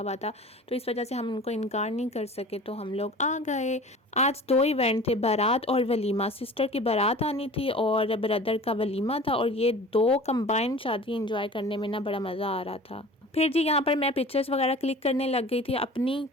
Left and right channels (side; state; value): both; normal; correlation 0.41